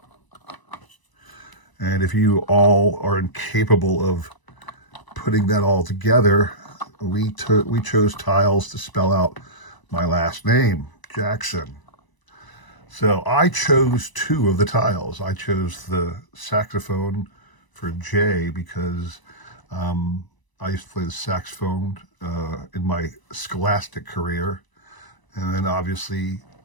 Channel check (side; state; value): right; late; 1.0 ms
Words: And if you all are incapable of putting that all together, we chose tiles to spell out my last name, Jackson. So I chose two of the tiles. I chose the saxophone for J because I used to play the saxophone in my scholastic career. And then obviously